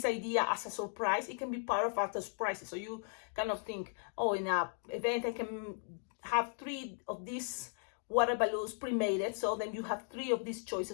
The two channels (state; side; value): silent; right; 53 dB below the other